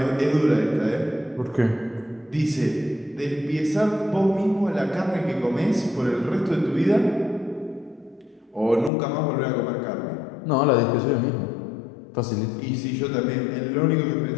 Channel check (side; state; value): right; drops out; at 8.9 s